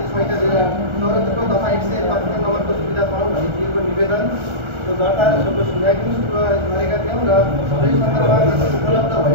संहिता 2074 दफा 155 नम्बरको सुविधा पाउँ भनी दिएको निवेदन र दर्ता र सोको सुनवाई पनि सुरु गरेका थियौँ र सबै सन्दर्भमा उपलब्ध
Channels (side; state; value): left; late; 1.4 ms